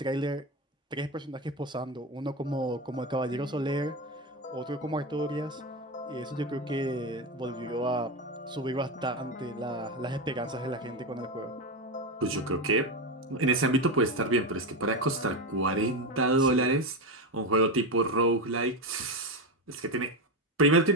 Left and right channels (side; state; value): both; normal; correlation 0.15